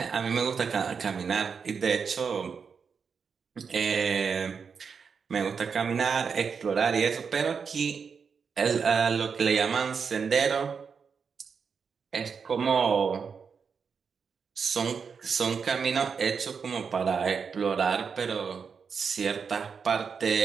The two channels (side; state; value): left; quieter; 6.0 dB